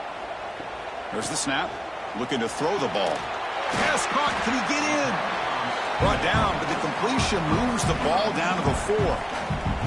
There's the snap. Looking to throw the ball. Pass caught. Can he get in? Brought down, but the completion moves the ball down to the 4.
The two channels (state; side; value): identical; both; correlation 1.00